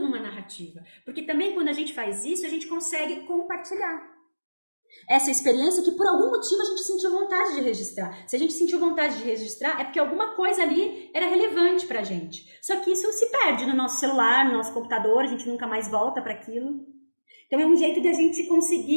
narrativa. Porque também quando a gente faz isso, a gente consegue compartilhar essa experiência que por algum motivo a gente sentiu vontade de registrar. Se a gente sentiu vontade de registrar, é porque alguma coisa ali era relevante pra gente. Só que isso se perde no nosso celular, no nosso computador, a gente nunca mais volta para aquilo. Então é um jeito de a gente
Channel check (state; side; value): inverted; both; correlation -1.00